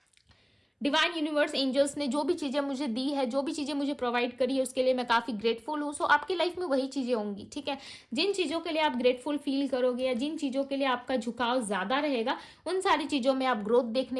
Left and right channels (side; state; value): both; identical; correlation 1.00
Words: डिवाइन यूनिवर्स एंजल्स ने जो भी चीजें मुझे दी है, जो भी चीजें मुझे प्रोवाइड करी है, उसके लिए मैं काफी ग्रेटफुल हूँ, सो आपकी लाइफ में वही चीजें होंगी, ठीक है। जिन चीजों के लिए आप ग्रेटफुल फील करोगे, या जिन चीजों के लिए आपका झुकाव ज्यादा रहेगा, उन सारी चीजों में आप ग्रोथ